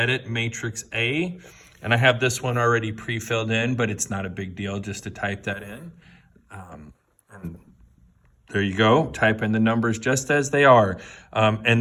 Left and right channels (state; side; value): identical; both; correlation 1.00